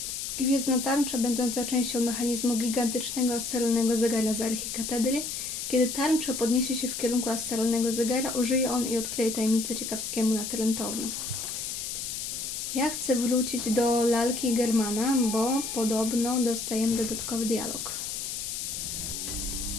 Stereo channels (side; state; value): left; noise; hiss, 5 dB below the sound